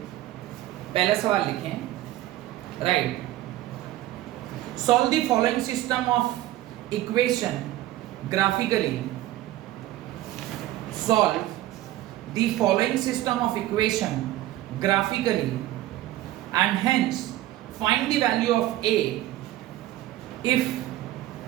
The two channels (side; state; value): left; quieter; 15.0 dB